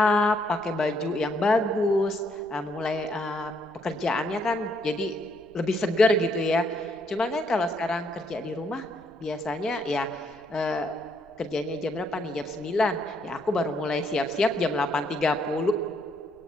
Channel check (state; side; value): noise; right; rumble, 29 dB below the sound